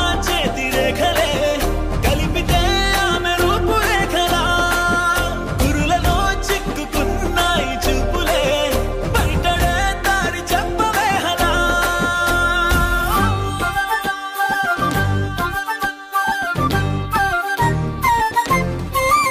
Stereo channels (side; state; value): both; identical; correlation 1.00